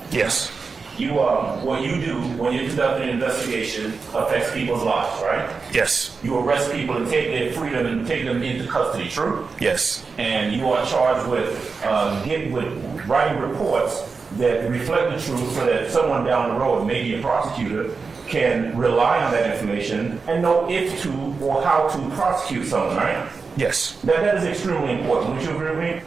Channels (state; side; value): quieter; left; 4.7 dB